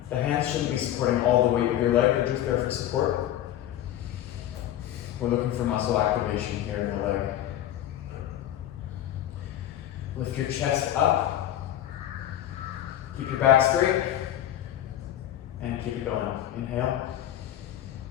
The hands shouldn't be supporting all the weight of your leg, they're just there for support. We're looking for muscle activation here in the leg. Lift your chest up. Keep your back straight. And keep it going. Inhale.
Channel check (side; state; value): right; quieter; 12.2 dB